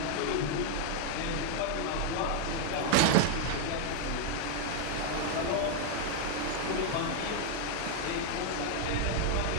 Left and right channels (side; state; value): both; different; correlation 0.00